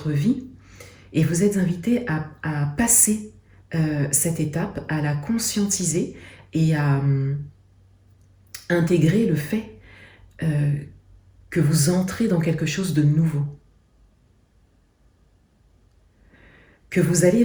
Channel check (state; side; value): identical; both; correlation 1.00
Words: vie et vous êtes invité à passer cette étape, à la conscientiser et à intégrer le fait que vous entrez dans quelque chose de nouveau. Que vous allez